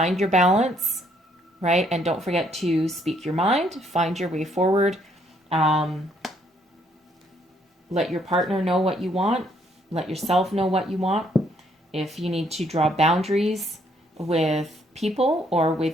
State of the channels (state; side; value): normal; both; correlation 0.69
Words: your balance, right? And don't forget to speak your mind, find your way forward. Let your partner know what you want. Let yourself know what you want. If you need to draw boundaries with people or